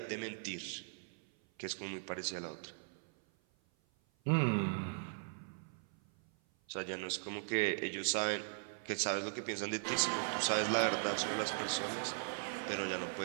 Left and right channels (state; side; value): silent; left; 52 dB below the other